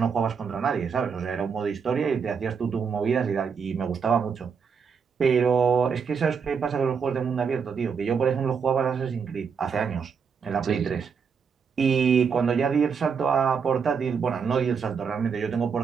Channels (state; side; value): quieter; left; 6.2 dB